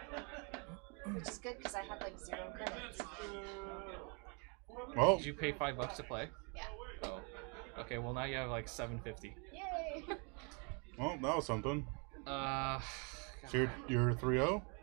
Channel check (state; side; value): quieter; left; 34.5 dB